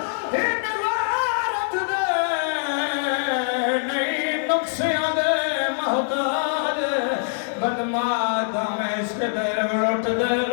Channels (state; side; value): silent; right; 63 dB below the other